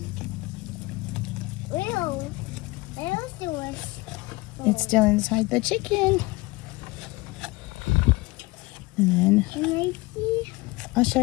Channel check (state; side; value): quieter; right; 22.4 dB